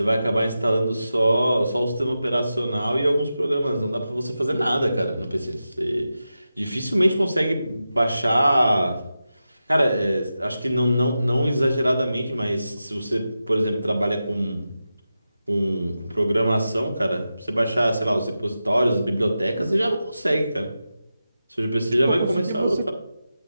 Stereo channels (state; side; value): inverted; both; correlation -0.91